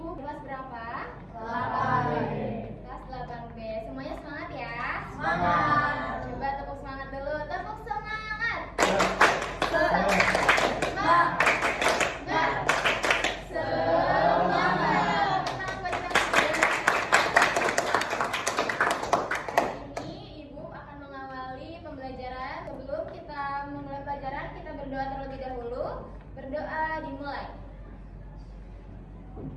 kelas berapa? 8B. Kelas 8B. Semuanya semangat ya? Semangat. Coba tepuk semangat dulu. Tepuk semangat. Sebelum kita memulai pelajaran, kita berdoa terlebih dahulu. Berdoa dimulai.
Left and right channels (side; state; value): both; identical; correlation 1.00